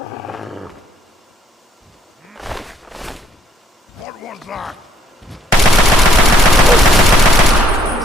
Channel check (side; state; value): both; normal; correlation 0.65